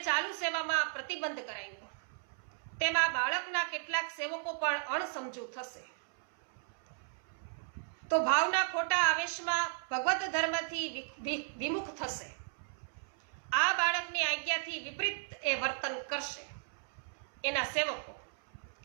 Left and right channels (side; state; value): left; silent; 54 dB below the other